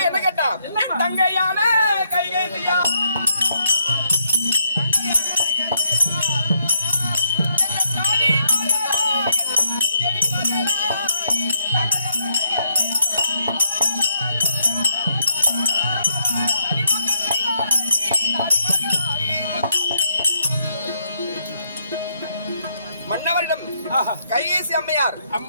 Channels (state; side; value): inverted; both; correlation -0.74